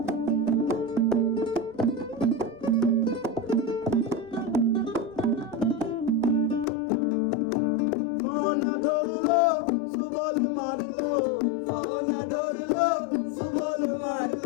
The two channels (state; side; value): drops out; right; at 6.7 s